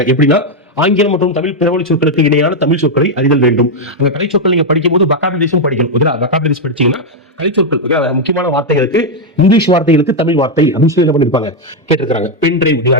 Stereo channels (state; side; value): normal; both; correlation 0.02